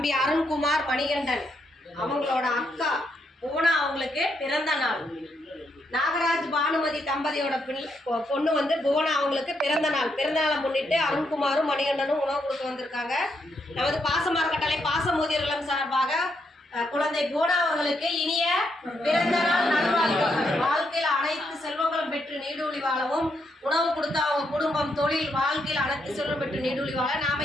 அருண்குமார் மணிகண்டன் அவங்களோட அக்கா பூனா அவங்களுக்கு பிறந்த நாள். நாகராஜ் பானுமதி தம்பதியோட பொண்ணு வந்து புவனா அவங்களுக்கு பிறந்த நாளை முன்னிட்டு அருண்குமாரும் மணிகண்டனும் உணவு கொடுக்க வந்திருக்காங்க. நமது பாச மரக்கட்டளை பாச முதியோர் இல்லம் சார்பாக குழந்தை புவனா அவர்களுக்கு இனிய பிறந்த நாள் நல்வாழ்த்துக்கள். வாழ்க்கையில் அனைத்து செல்வங்களும் பெற்று நீடூழி வாழவும், உணவு கொடுத்த அவங்க குடும்பம், தொழில், வாழ்க்கையில் அனைத்து செல்வம் பெற்று நீடூழி வாழ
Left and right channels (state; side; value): normal; both; correlation 0.78